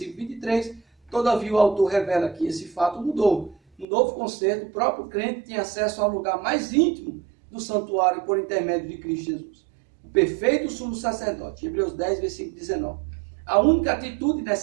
23, todavia o autor revela que esse fato mudou. No novo concerto, o próprio crente tinha acesso ao lugar mais íntimo do santuário por intermédio de Cristo Jesus. O perfeito sumo sacerdote, Hebreus 10, versículo 19. A única atitude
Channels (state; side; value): drops out; left; at 3.9 s